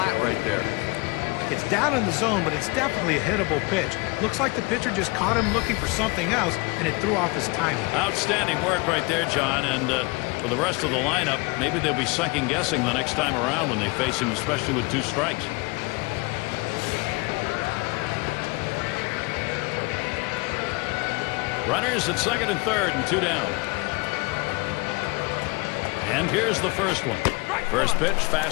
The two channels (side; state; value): right; quieter; 26.7 dB